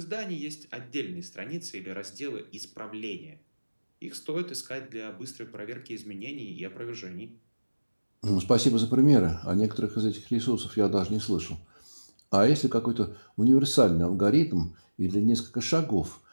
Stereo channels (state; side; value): inverted; both; correlation -1.00